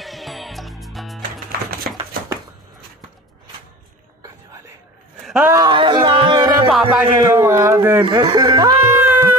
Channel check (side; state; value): both; normal; correlation 0.37